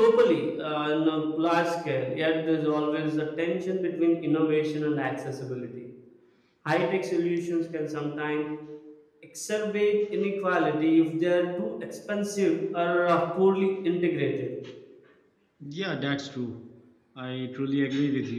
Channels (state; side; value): identical; both; correlation 1.00